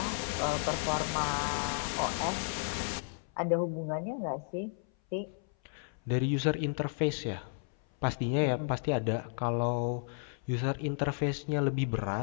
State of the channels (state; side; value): silent; right; 56 dB below the other